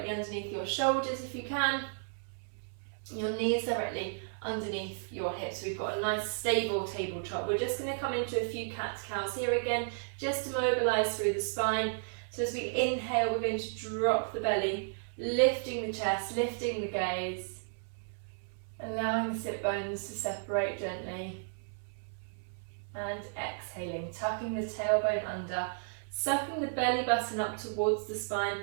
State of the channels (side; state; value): left; silent; 55 dB below the other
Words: underneath your shoulders if you can. Your knees directly underneath your hips. We've got a nice stable tabletop. We're just going to come into a few cat-cows here again, just to mobilise through the spine. So as we inhale, we're going to drop the belly, lifting the chest, lifting the gaze, allowing the sit bones to separate gently. And exhaling, tucking the tailbone under, sucking the belly button up towards the spine,